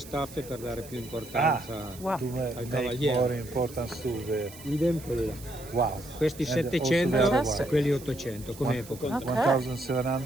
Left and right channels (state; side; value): noise; right; hiss, 18 dB below the sound